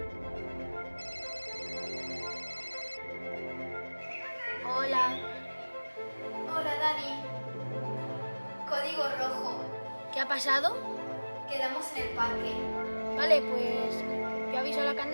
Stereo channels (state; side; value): inverted; both; correlation -1.00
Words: Hola. Hola, Dani. Código rojo. ¿Qué ha pasado? Quedamos en el parque. Vale, pues yo aviso a la